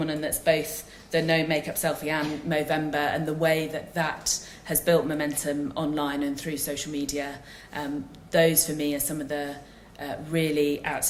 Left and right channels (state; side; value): identical; both; correlation 1.00